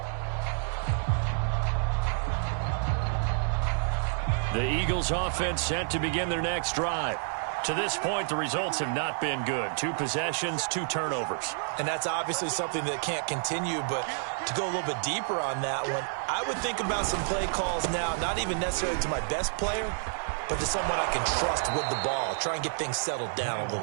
The Eagles offense set to begin their next drive. To this point, the results have not been good. 2 possessions, 2 turnovers. And that's obviously something that can't continue, but to go a little bit deeper on that one, I would think about some play calls now, not even necessarily to my best player, but to someone I can trust with the ball. Try and get things settled down a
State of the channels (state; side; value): silent; left; 56 dB below the other